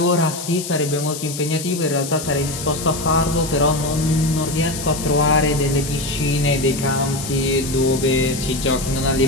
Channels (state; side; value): noise; left; hiss, 8 dB below the sound